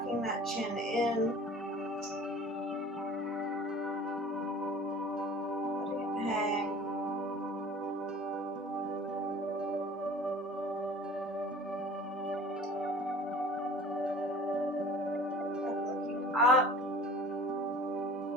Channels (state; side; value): normal; both; correlation 0.44